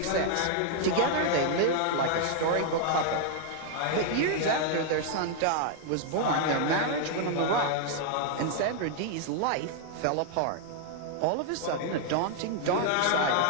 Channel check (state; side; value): different; both; correlation 0.00